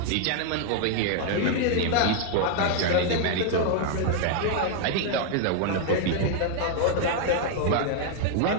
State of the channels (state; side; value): different; both; correlation 0.00